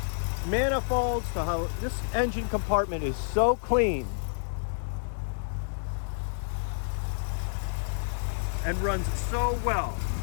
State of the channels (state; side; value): silent; right; digital silence